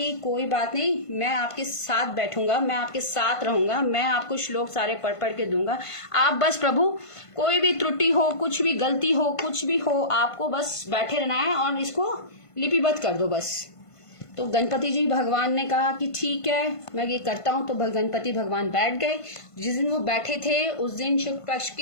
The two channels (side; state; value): right; late; 1.5 ms